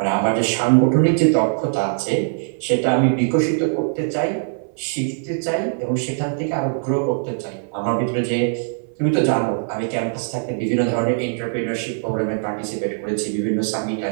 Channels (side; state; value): left; silent; 62 dB below the other